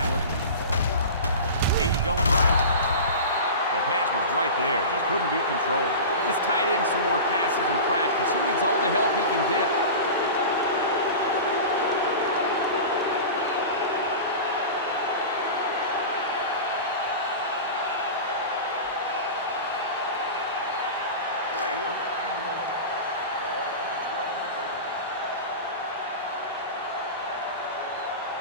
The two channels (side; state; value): both; inverted; correlation -0.31